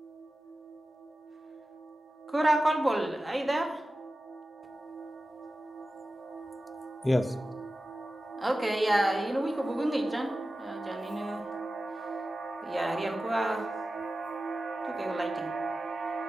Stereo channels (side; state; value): both; normal; correlation 0.94